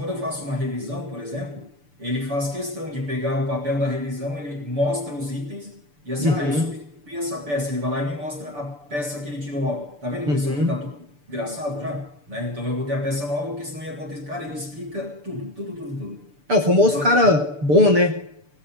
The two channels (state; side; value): late; left; 6.8 ms